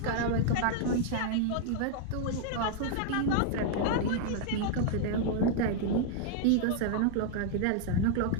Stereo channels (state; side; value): different; both; correlation -0.01